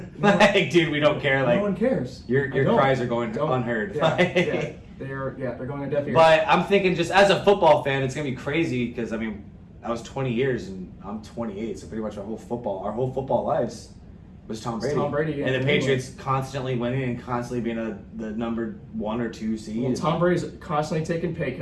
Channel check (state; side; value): identical; both; correlation 1.00